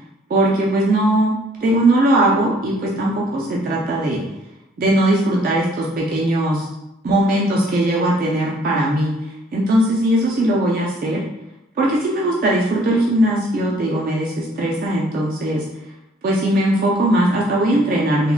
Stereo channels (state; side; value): normal; both; correlation 0.60